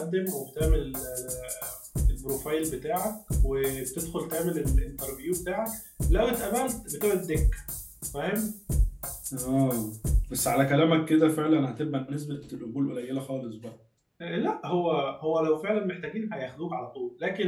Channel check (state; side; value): identical; both; correlation 1.00